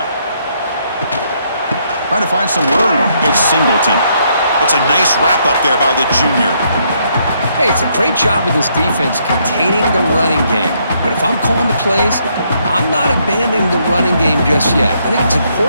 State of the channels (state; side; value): inverted; both; correlation -0.72